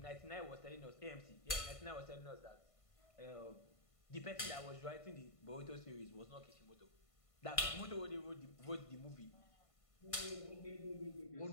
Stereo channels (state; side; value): late; right; 1.5 ms